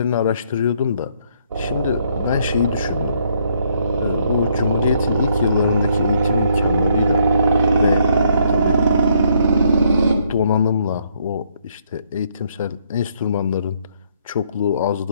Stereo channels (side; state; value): both; inverted; correlation -0.69